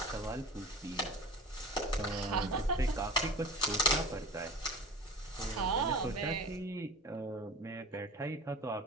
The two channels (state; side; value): normal; both; correlation 0.39